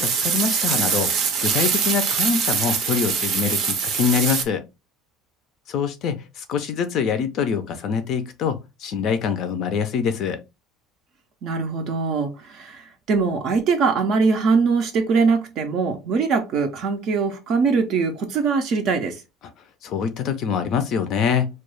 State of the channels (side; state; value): both; normal; correlation 0.46